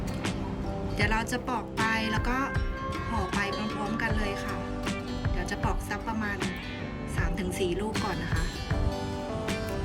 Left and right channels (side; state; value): both; identical; correlation 1.00